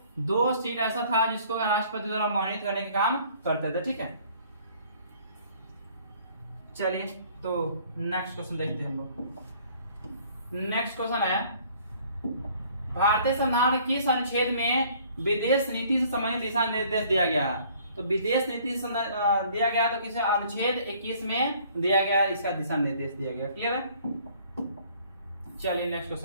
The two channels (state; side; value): inverted; both; correlation -0.57